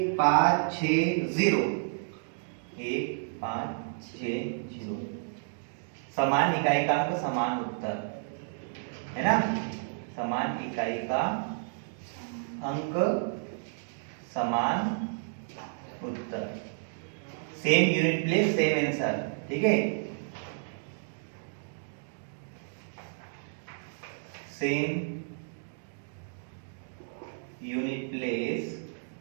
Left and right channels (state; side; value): silent; left; digital silence